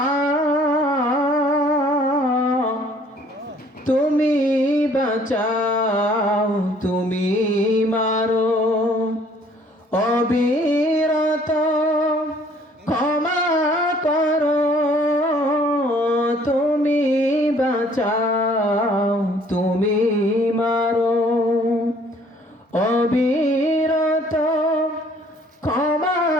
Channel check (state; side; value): normal; both; correlation 0.58